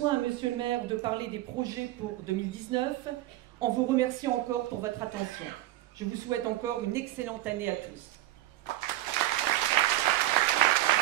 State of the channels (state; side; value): quieter; left; 15.6 dB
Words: à Monsieur le maire de parler des projets pour 2019 en vous remerciant encore pour votre attention. Je vous souhaite encore une excellente année à tous.